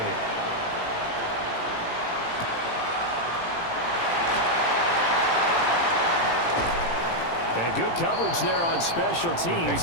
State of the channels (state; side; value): late; right; 18 ms